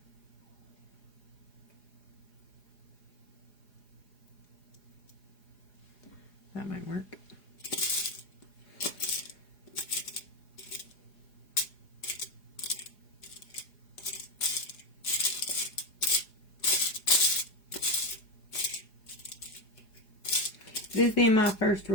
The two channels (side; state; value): right; late; 4.9 ms